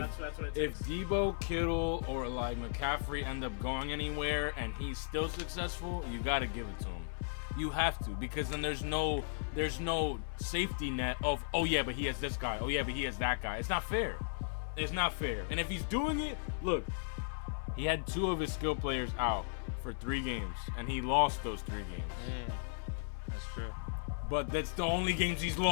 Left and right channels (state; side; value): silent; right; 54 dB below the other